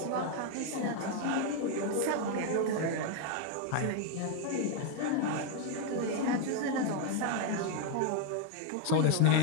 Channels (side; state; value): both; different; correlation 0.01